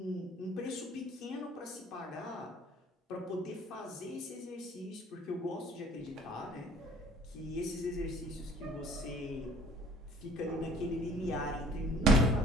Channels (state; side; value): normal; both; correlation 0.53